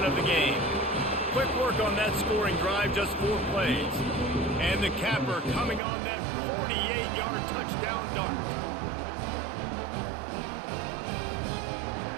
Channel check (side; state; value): left; drops out; at 5.8 s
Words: of the game. Quick work on that scoring drive, just 4 plays. And the capper coming on that 48-yard touchdown dart.